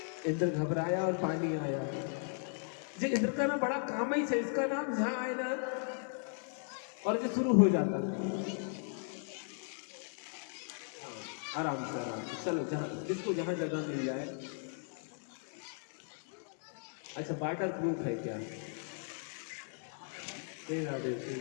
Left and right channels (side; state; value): right; silent; 53 dB below the other